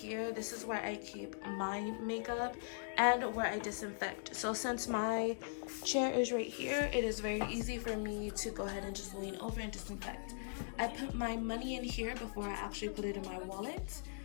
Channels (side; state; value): right; silent; digital silence